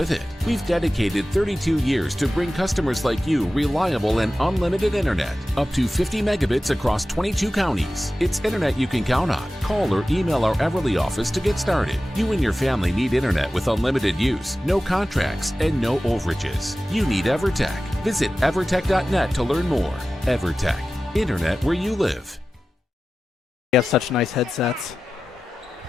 it. We've dedicated 32 years to bring customers like you reliable and unlimited internet, up to 50 megabits across 22 counties. It's internet you can count on. Call or email our Everly office to get started. You and your family need internet with unlimited use, no contracts, and no overages. You need EverTech. Visit evertech.net to learn more. EverTech, internet where you live. We have such nice headsets.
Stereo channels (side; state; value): both; normal; correlation 0.94